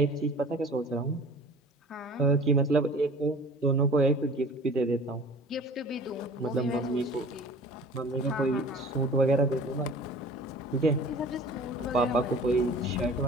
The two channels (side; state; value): both; normal; correlation 0.44